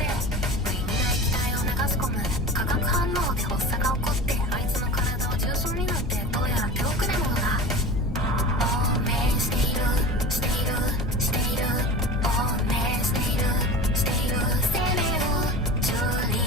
無意味な液体を流し込む。化学反応で発作が起こって、あいつの体は重症になって、どうやら手遅れ者だ。亡命しているしているしている、亡命しているしている、生命を蹂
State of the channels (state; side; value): normal; both; correlation 0.33